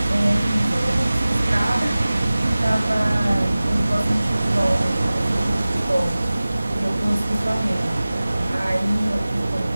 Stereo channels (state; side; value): inverted; both; correlation -0.98